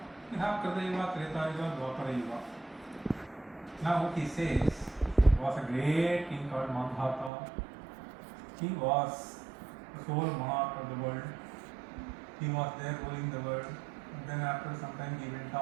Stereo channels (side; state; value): left; drops out; at 7.3 s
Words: You have Kritayuga, Tretayuga, Dwapara Yuga. Now what he says, was a great king called Mandhata. He was the sole monarch of the world. He was there ruling the world. And then after some time he went